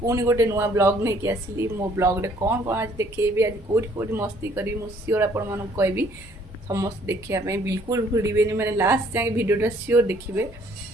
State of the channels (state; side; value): normal; both; correlation 0.61